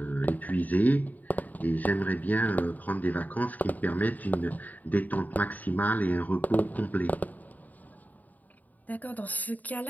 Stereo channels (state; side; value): late; right; 0.080 ms